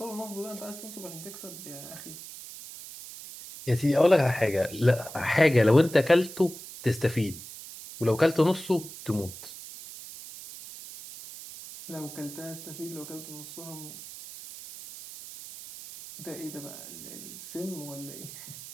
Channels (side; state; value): right; noise; hiss, 13 dB below the sound